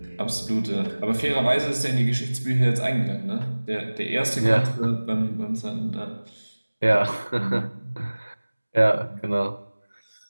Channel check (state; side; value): inverted; both; correlation -1.00